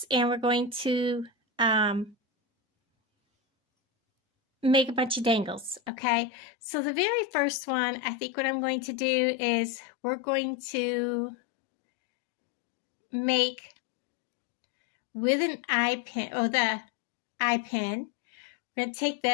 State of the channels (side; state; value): right; drops out; at 5.9 s